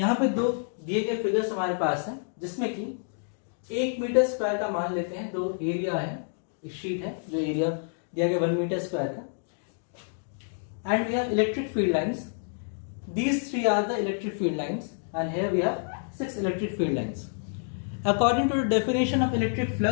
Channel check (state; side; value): silent; right; digital silence